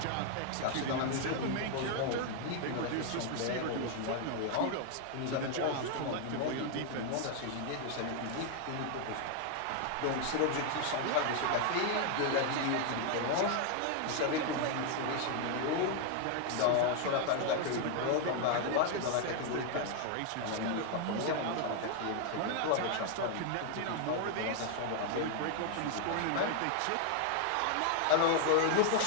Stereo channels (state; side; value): different; both; correlation 0.00